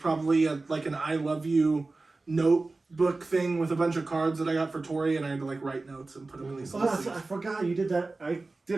like an I love you notebook thing with a bunch of cards that I got for Tori, and I had to like write notes and put them in these little I things. forgot you did that. I did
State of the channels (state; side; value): quieter; left; 3.4 dB